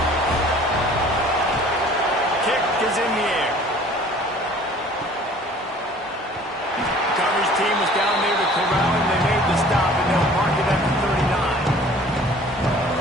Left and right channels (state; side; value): normal; both; correlation 0.50